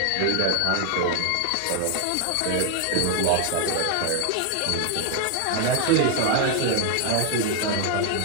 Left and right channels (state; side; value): different; both; correlation 0.00